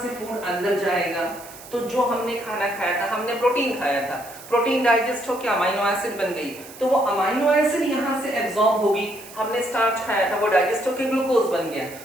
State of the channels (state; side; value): noise; right; hiss, 17 dB below the sound